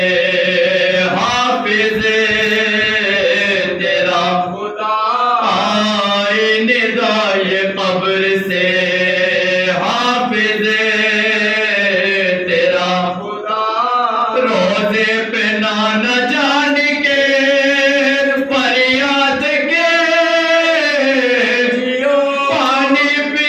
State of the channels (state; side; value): identical; both; correlation 1.00